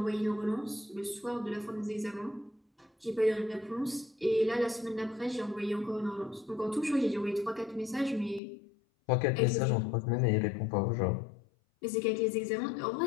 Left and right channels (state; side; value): drops out; right; at 8.4 s